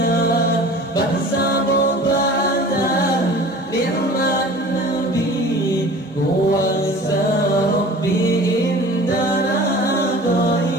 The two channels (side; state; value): both; normal; correlation 0.42